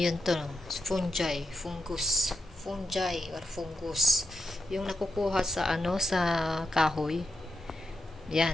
to, fungi or fungus. Yung nakukuha sa sa kahoy.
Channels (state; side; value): normal; both; correlation 0.82